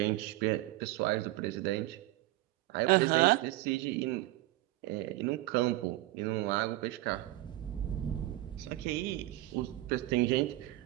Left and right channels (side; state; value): left; quieter; 17.2 dB